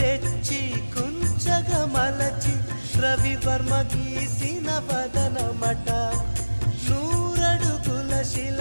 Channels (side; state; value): both; inverted; correlation -1.00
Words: కుంచగా మలచి రవివర్మ గీసిన వదనమట నూరడుగుల శిల